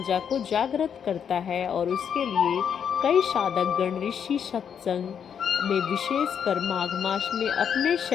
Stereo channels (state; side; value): quieter; right; 7.8 dB